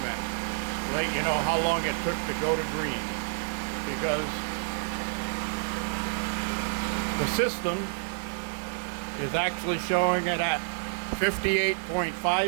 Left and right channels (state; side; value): silent; left; 59 dB below the other